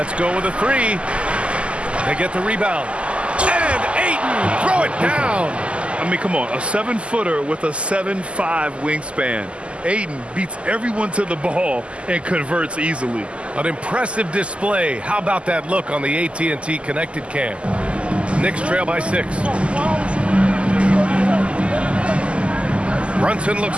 go with a 3. They get the rebound. And Ayton, throw it down. I mean, come on, a 7-footer with a 7'5" wingspan. Ayton beats everyone to the ball and converts easily. An impressive display. How about that look on the AT&T connected cam? Knicks trail by 6. Brunson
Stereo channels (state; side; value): late; left; 0.055 ms